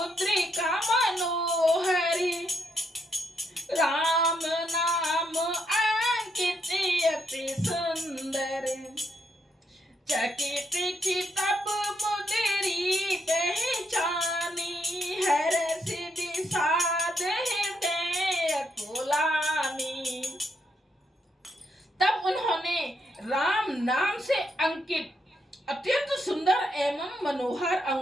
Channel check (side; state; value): both; normal; correlation 0.78